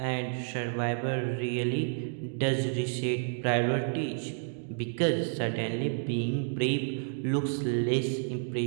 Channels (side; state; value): left; silent; digital silence